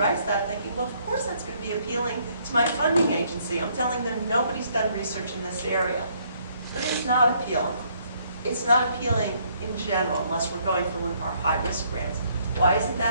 that thinking, well, of course that's going to be appealing to my funding agency. I'm telling them nobody's done research in this area. But it's not appealing. It's not appealing in general, unless we're going for one of our high-risk grants. Why isn't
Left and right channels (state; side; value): inverted; both; correlation -0.67